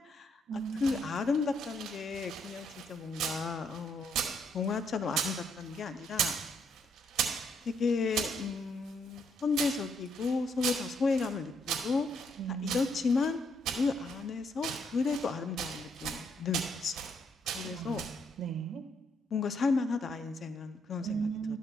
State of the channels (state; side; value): normal; both; correlation 0.73